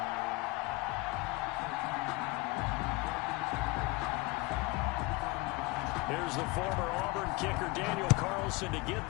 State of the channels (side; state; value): right; quieter; 22.9 dB